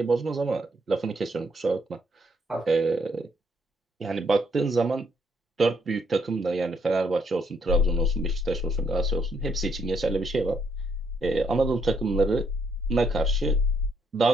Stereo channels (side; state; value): both; normal; correlation 0.72